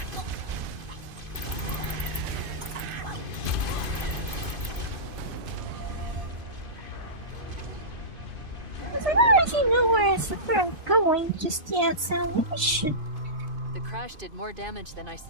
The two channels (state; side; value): late; left; 2.5 ms